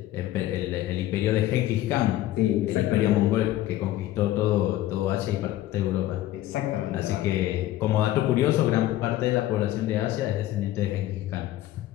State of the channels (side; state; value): right; quieter; 14.3 dB